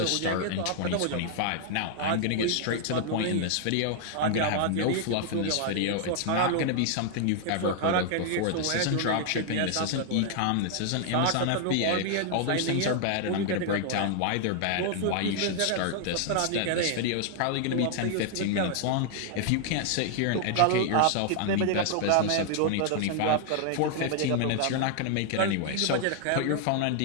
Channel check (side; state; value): both; different; correlation 0.00